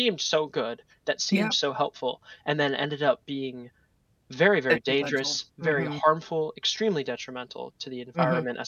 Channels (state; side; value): identical; both; correlation 1.00